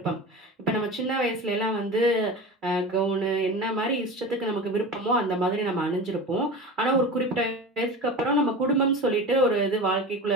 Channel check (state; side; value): normal; both; correlation 0.30